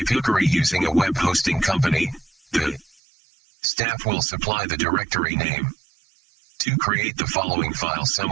you're using a web hosting company, the staff will supply the directory name. 2. Create the following file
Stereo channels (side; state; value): left; drops out; at 3.0 s